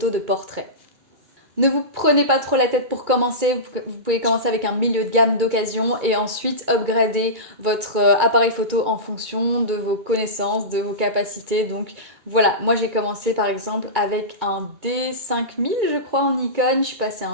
de portrait. Ne vous prenez pas trop la tête pour commencer, vous pouvez commencer avec un milieu de gamme d'occasion et ensuite upgrader votre appareil photo en fonction de vos connaissances, de vos capacités. Donc voilà, moi j'ai commencé par exemple avec un D5000 je crois en Nikon, je suis passée à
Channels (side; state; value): left; late; 2.2 ms